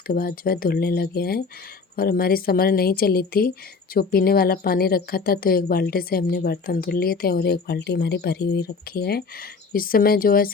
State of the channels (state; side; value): quieter; right; 4.8 dB